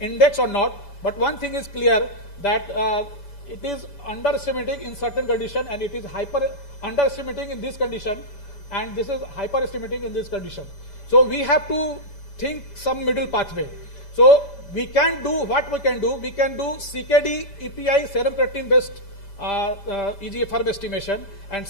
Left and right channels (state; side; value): late; right; 7.0 ms